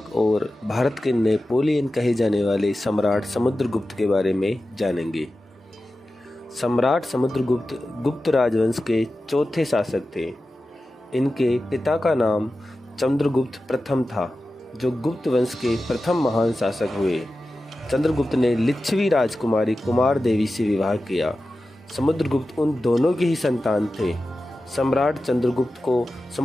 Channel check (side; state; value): both; normal; correlation 0.94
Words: और भारत के नेपोलियन कहे जाने वाले सम्राट समुद्रगुप्त के बारे में जानेंगे। सम्राट समुद्रगुप्त गुप्त राजवंश के चौथे शासक थे। इनके पिता का नाम चंद्रगुप्त प्रथम था, जो गुप्त वंश के प्रथम महान शासक हुए। चंद्रगुप्त ने लिच्छवी राजकुमारी कुमार देवी से विवाह किया। समुद्रगुप्त उन दोनों की ही संतान थे। सम्राट चंद्रगुप्त को